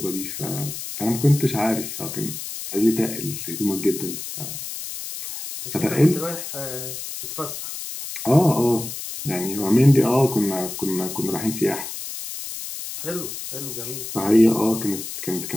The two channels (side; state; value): left; noise; hiss, 8 dB below the sound